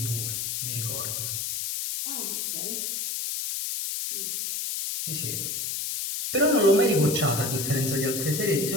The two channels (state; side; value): noise; left; hiss, 2 dB below the sound